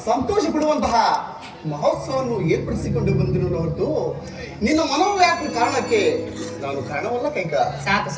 ಸಂತೋಷ ಪಡುವಂತಹ ಮಹೋತ್ಸವವನ್ನು ಏರ್ಪಡಿಸಿಕೊಂಡು ಬಂದಿರೋ ಹೊರತು ನಿನ್ನ ಮನೋವ್ಯಾಕುಲ ಕಾರಣಕ್ಕೆ ನಾನು ಕಾರಣವಲ್ಲ ಕೈಕ. ಸಾಕು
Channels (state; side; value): identical; both; correlation 1.00